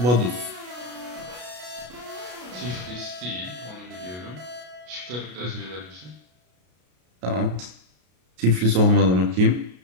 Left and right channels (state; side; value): late; left; 33 ms